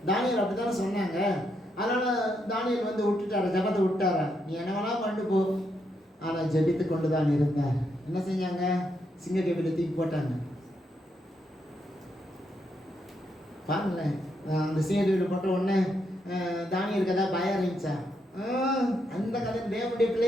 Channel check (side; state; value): both; normal; correlation 0.79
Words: தானியேல் அப்படித்தானே சொன்னாங்க. அதனால தானியேல் வந்து விட்டுட்டார, ஜபத்தை விட்டார, நீ என்ன வேணா பண்ணு போ. ஆனா ஜபித்து கொண்டு தான் இருந்தார். என்ன செஞ்சாங்க, சிங்க கேபில தூக்கி போட்டாங்க. பாருங்களேன், அந்த சிங்க கேபில போட்ட உடனே தானியேலுக்கு ஏதாவது பயம் இருந்துச்சா? அந்த கதை தேவனுடைய